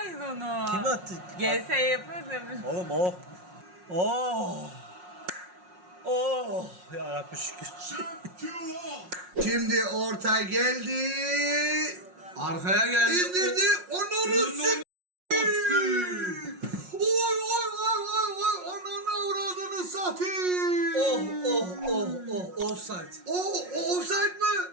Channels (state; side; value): late; left; 5.5 ms